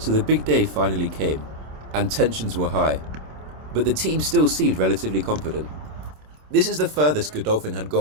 the big day finally came, and tensions were high. But the team still seemed relatively confident. This is the furthest Godolphin had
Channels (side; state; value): left; late; 27 ms